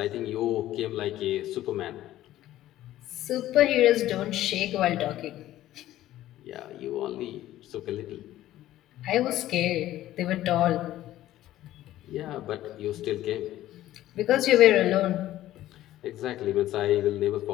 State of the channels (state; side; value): quieter; right; 14.1 dB